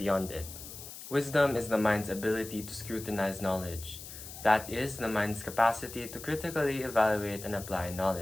it. Wisdom is the mind's ability to scrutinize knowledge. That is, the mind's capacity to critically evaluate and apply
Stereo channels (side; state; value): left; noise; hiss, 13 dB below the sound